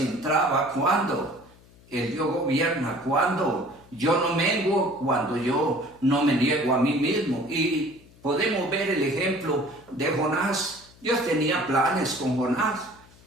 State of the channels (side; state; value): left; noise; hum, 26 dB below the sound